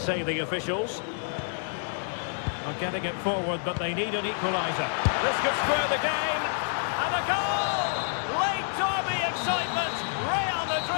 the officials. Are getting it forward, but they need an equaliser. This could square the game. And a goal! Late derby excitement. Real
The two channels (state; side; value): silent; right; 59 dB below the other